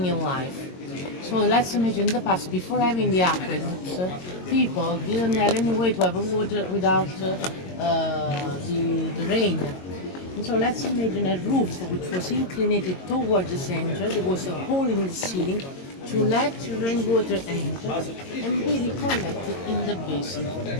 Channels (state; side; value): late; right; 22 ms